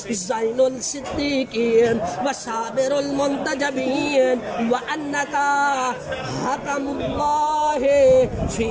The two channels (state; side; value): identical; both; correlation 1.00